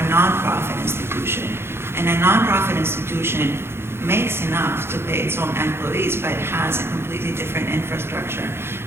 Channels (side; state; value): left; late; 0.12 ms